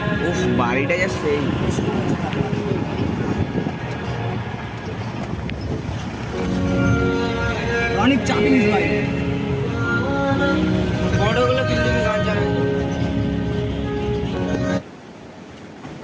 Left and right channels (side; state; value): both; identical; correlation 1.00